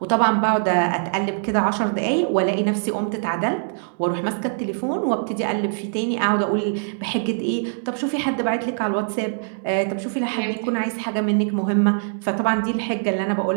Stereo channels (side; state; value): left; silent; digital silence